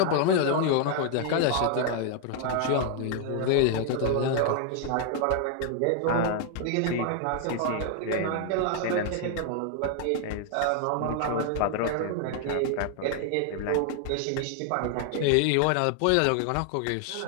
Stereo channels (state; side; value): different; both; correlation 0.00